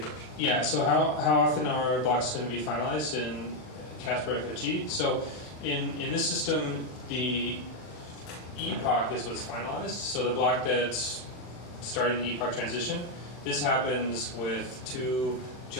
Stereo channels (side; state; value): right; late; 40 ms